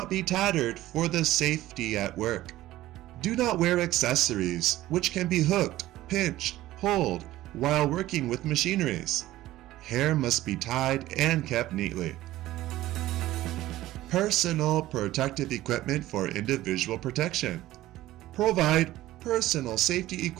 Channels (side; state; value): left; quieter; 15.6 dB